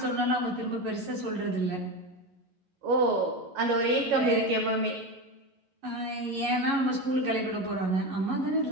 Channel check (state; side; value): late; left; 11 ms